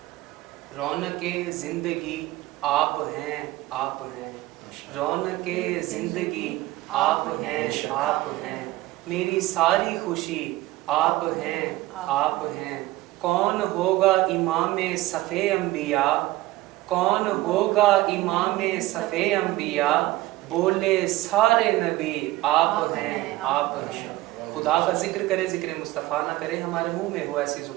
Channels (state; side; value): quieter; left; 17.6 dB